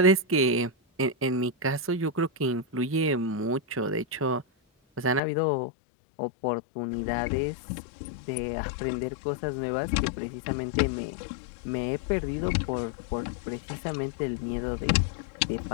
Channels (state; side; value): drops out; right; at 5.2 s